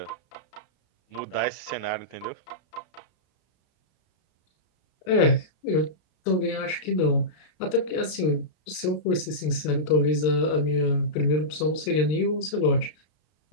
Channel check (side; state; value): right; late; 33 ms